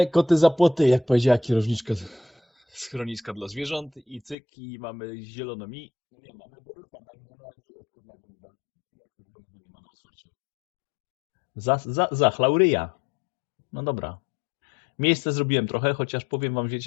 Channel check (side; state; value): right; drops out; at 4.4 s